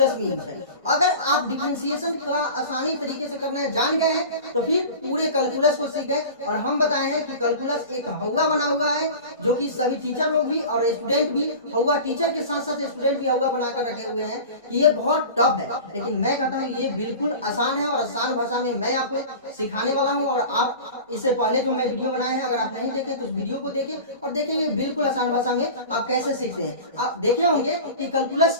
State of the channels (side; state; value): both; inverted; correlation -0.35